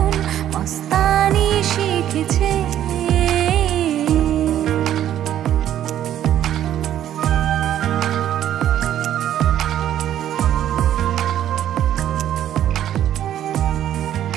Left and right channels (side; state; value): left; quieter; 11.3 dB